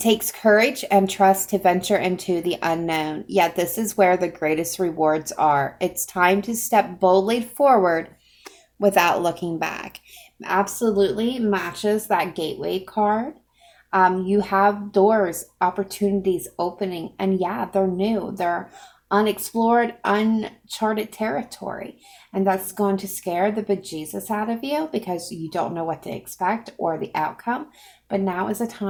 courage and trust to venture into the unknown. Yet this is where the greatest rewards are. It's time to step boldly forward without looking back. Absolutely matches that gateway card. You have doors, opportunities opening, and yeah, they're new. They're unexplored, uncharted territory. And that's going to scare the bejesus out of you because you don't know what to expect or the outcome. But now is the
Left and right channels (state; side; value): identical; both; correlation 1.00